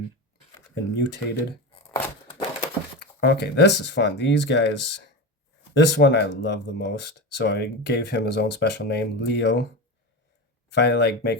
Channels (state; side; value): normal; both; correlation 0.22